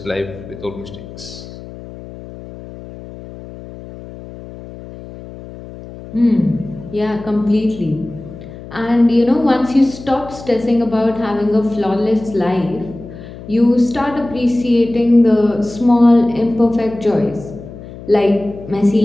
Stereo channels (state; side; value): noise; left; hum, 15 dB below the sound